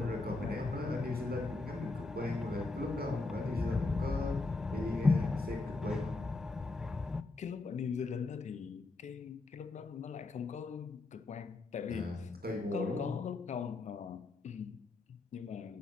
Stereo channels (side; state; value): right; quieter; 3.4 dB